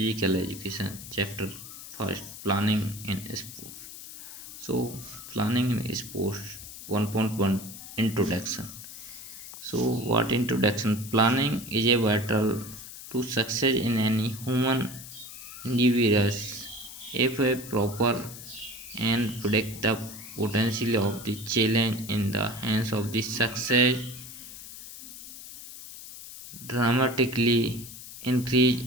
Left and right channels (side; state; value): left; noise; hiss, 13 dB below the sound